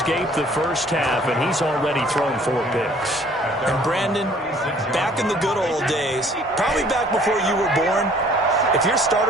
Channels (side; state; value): both; normal; correlation 0.56